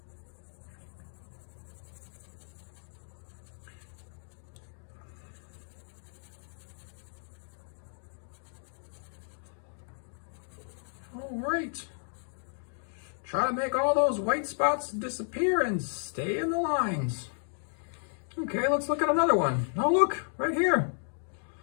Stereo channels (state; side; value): silent; right; 56 dB below the other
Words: All right. Try to make all those white spots disappear and stay in the lines. Okay, let's look at another one. Now look, right here.